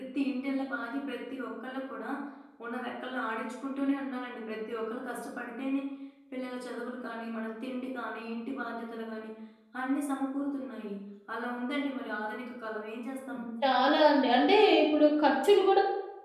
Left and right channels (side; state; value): both; identical; correlation 1.00